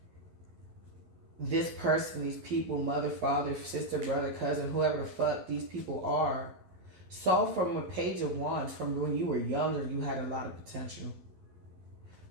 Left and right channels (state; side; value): late; left; 11 ms